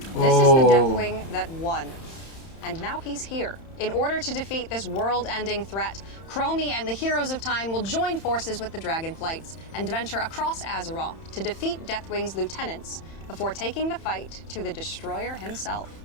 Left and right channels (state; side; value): late; right; 31 ms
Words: is the Deathwing that won. And now he's here. In order to defeat this world-ending threat, Chromie and the Heroes of Time will join forces with the Dragonflights and venture across Azeroth to defeat Deathwing's lieutenants before taking the fight to the Destroyer himself.